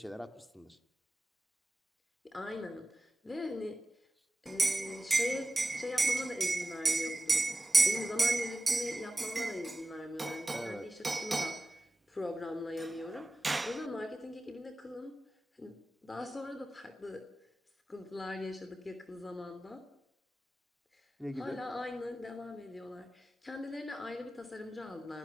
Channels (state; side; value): normal; both; correlation 0.95